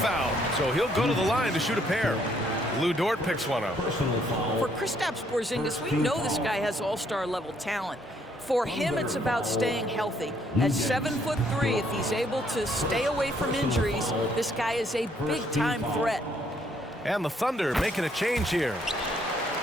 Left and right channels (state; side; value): normal; both; correlation 0.68